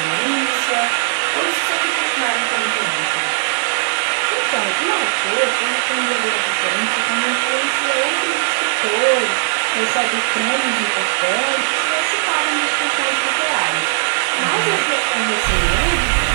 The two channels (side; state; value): left; silent; digital silence